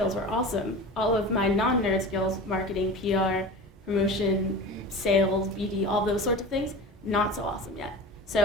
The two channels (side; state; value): both; normal; correlation 0.32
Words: were awesome. All of my non-nerd skills, marketing, PR, promotion, sales, BD, all those sorts of things, not so awesome yet.